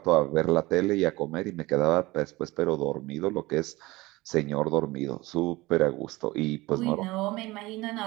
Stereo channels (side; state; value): left; quieter; 20.6 dB